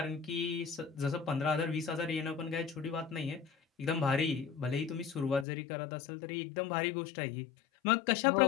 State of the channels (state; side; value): drops out; right; at 5.5 s